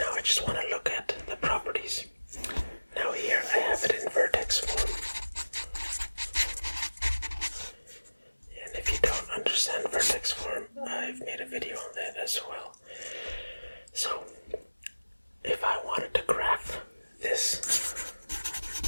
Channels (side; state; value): both; inverted; correlation -1.00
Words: I just want to look at the properties. Now here I have it in vertex form. And if you don't understand vertex form, I've made a video on that as well. So, if I wanted to graph this,